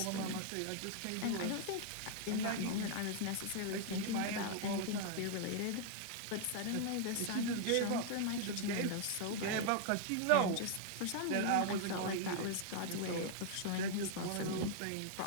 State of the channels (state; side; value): different; both; correlation 0.00